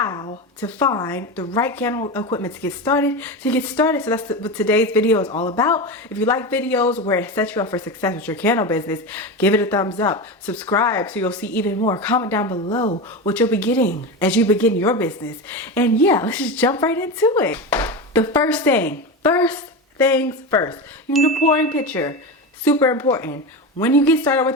to find the right candle equipment to get started. So that's what today's video is all about. If you like videos where it sets you up for success with your candle business, give it a thumbs up. Subscribe so you'll see even more. Comment down below what you'll be getting as you begin your business. And yeah, let's just jump right into it. The first things first. You need a pouring pitcher. Super important. When you get started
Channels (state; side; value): normal; both; correlation 0.20